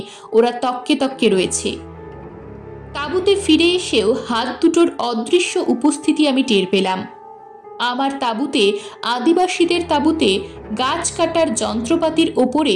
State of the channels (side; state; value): both; identical; correlation 1.00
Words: ওরা তককে তককে রয়েছে। তাঁবুতে ফিরে এসেও হাত দুটোর অদৃশ্য উপস্থিতি আমি টের পেলাম। আমার তাঁবুতে, আদিবাসীদের তাঁবুতে গাছ কাটার যন্ত্রপাতির ওপরে